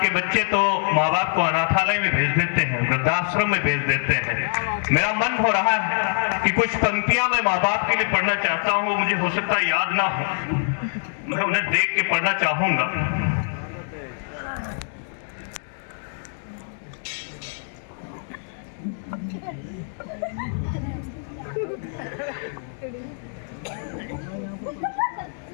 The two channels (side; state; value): right; silent; digital silence